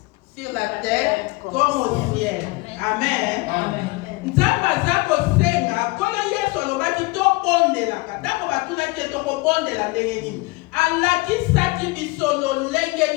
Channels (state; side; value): quieter; right; 24.3 dB